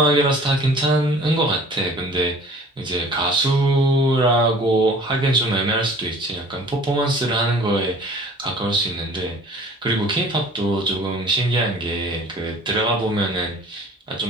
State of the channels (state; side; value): normal; both; correlation 0.48